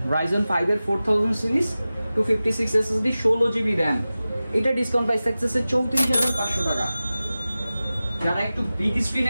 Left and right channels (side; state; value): both; inverted; correlation -0.96